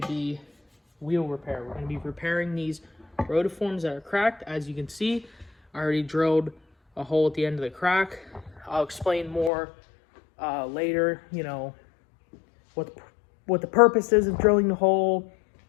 be wheel repair. We're going to be repairing these rotiforms that are cracked. As you can see, I already drilled a hole at the end of the crack. I'll explain more later, you know, what the purpose is of drilling the hole,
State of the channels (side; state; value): right; drops out; at 9.5 s